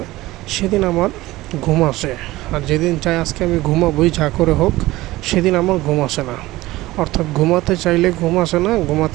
সেদিন আমার ঘুম আসে। আর যেদিন চাই আজকে আমি ঘুমাবোই যা করে হোক, সেদিন আমার ঘুম আসে না। অর্থাৎ ঘুমাতে চাইলে ঘুম আসে না,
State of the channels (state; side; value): quieter; left; 18.1 dB